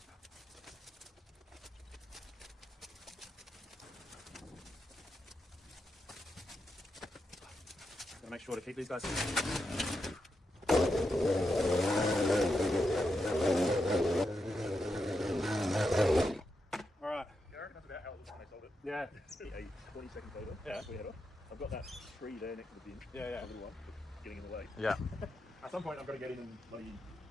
Gotta make sure to keep these guys. Alright. Yeah, I reckon that's about how it looks when they sold it. Yeah. A 20-second photo. Yeah. We had off. I've got that tree there next to the bin. Yeah, yeah. A little one, getting in the way. Yeah. At some point, I'm going to get in and bloody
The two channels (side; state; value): both; normal; correlation 0.85